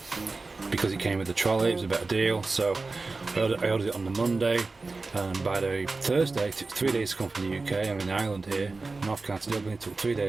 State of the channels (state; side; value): quieter; left; 3.7 dB